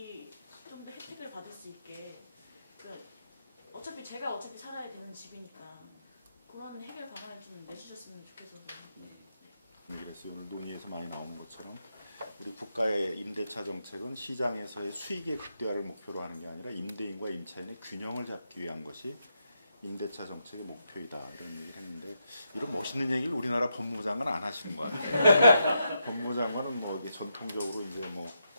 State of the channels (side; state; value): both; inverted; correlation -0.83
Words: 좀 더 혜택을 받을 수 있게 어차피 제가 살아야 되는 집이니까 그런 해결 방안을 좀 내주셨으면 좋겠어서. 그래서 오늘 논의에서 많이 나오는 것처럼 우리 국가의 임대차 정책은 시장에서의 수익의 극대화를 목표로 하는 게 아니라 임대인과 임차인의 균형을 잡기 위한 것이 임대차 정책의 목표이다 이런 얘기를 했는데 이런 멋있는 얘기를 우리나라 법무부 장관은 안 하시는 것 같아요. 법무부 장관은 뭐 이게 전통적으로 이제 뭐